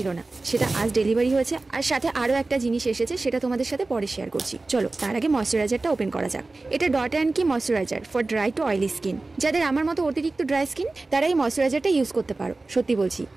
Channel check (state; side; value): quieter; left; 3.3 dB